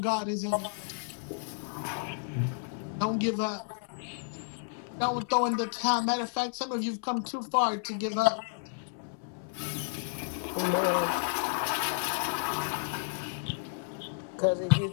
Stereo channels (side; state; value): right; silent; 57 dB below the other